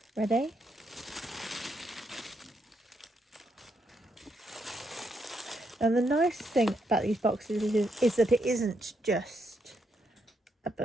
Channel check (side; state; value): both; normal; correlation 0.78